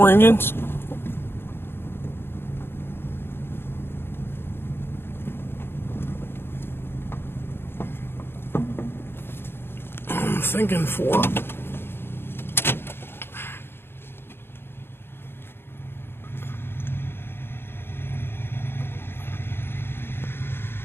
inches. I'm thinking 4.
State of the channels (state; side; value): late; right; 0.11 ms